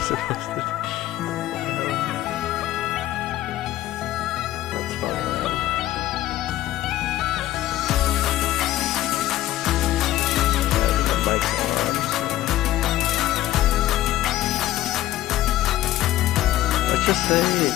supposed to do? That's funny, man. The mic's on. Let's just say,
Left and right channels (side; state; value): right; quieter; 14.6 dB